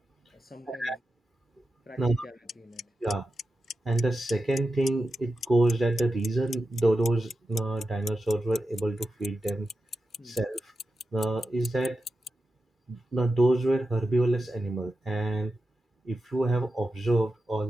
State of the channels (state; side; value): normal; both; correlation 0.91